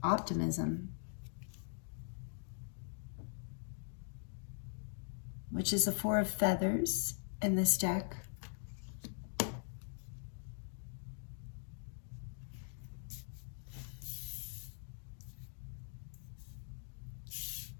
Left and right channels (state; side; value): silent; right; digital silence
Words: optimism, which is the 4 of Feathers in this deck.